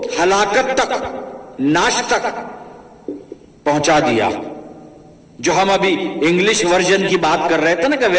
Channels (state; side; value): identical; both; correlation 1.00